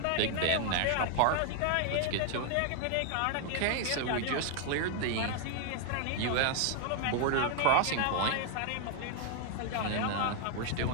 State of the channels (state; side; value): different; both; correlation 0.00